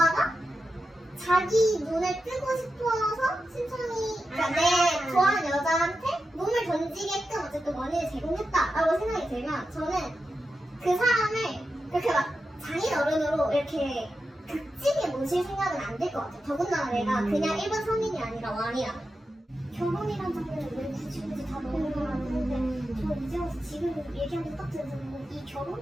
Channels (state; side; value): normal; both; correlation 0.90